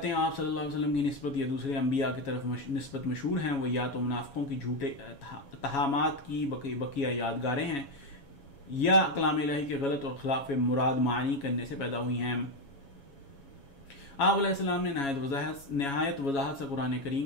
آپ صلی اللہ علیہ وسلم کی نسبت یا دوسرے انبیاء کی طرف نسبت مشہور ہیں وہ یا تو منافقوں کی جھوٹے اتہامات کی بقیہ یادگاریں ہیں یا کلام الہی کے غلط اور خلاف مراد معنی کرنے سے پیدا ہوئی ہیں۔ آپ علیہ السلام نے نہایت وضاحت سے قرآن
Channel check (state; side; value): late; right; 7.2 ms